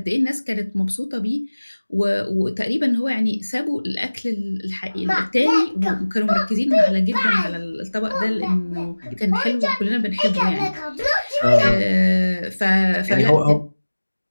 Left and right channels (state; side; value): inverted; both; correlation -1.00